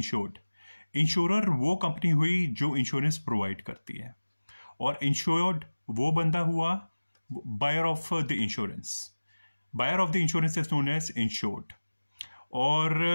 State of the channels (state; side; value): inverted; both; correlation -1.00